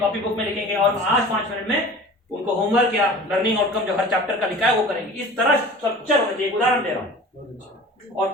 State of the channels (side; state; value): both; normal; correlation 0.41